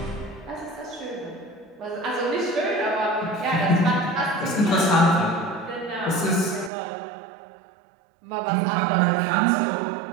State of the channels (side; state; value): left; drops out; at 6.7 s